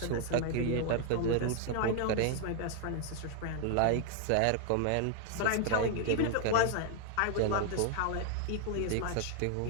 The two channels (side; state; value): both; different; correlation 0.00